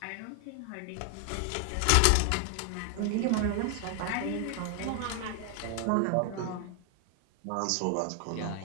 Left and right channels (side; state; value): both; different; correlation 0.00